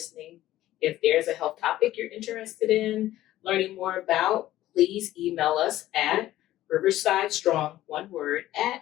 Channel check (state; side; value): quieter; right; 14.5 dB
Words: If there's a health topic you're interested in learning more about, please email us at riversidestrong, one word,